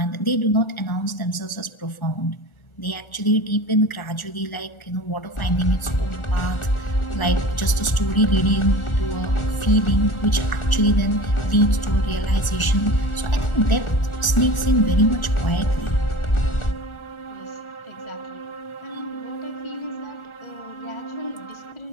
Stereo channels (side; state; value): right; late; 1.4 ms